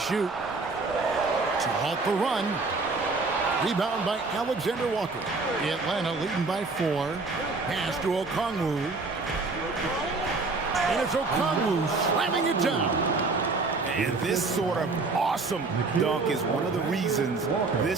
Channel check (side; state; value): left; quieter; 3.8 dB